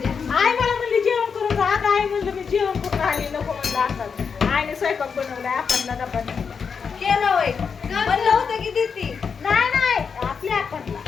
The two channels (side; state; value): right; quieter; 6.0 dB